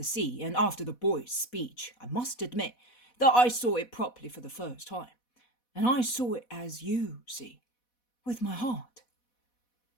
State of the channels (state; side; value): late; right; 4.1 ms